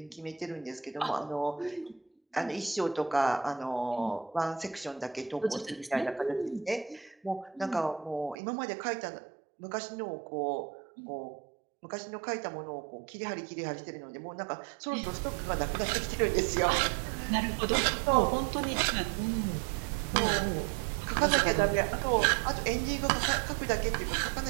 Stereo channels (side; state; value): left; drops out; at 8.3 s